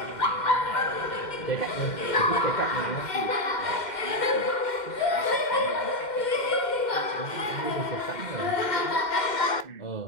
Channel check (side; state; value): right; late; 2.1 ms